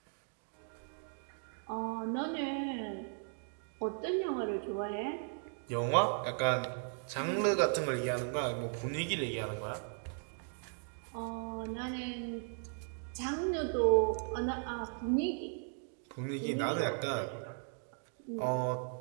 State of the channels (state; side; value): silent; left; 53 dB below the other